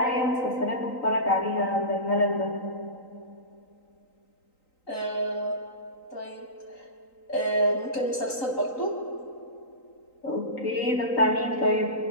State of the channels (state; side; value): late; right; 3.9 ms